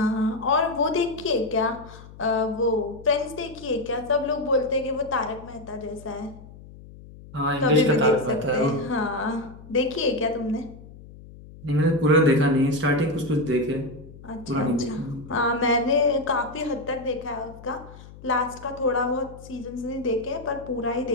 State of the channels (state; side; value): noise; left; hum, 18 dB below the sound